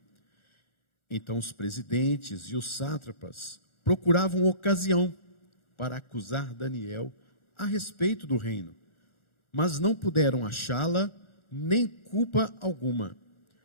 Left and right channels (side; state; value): right; late; 1.4 ms